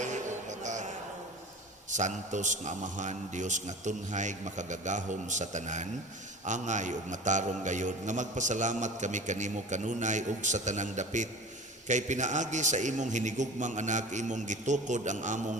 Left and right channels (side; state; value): both; normal; correlation 0.38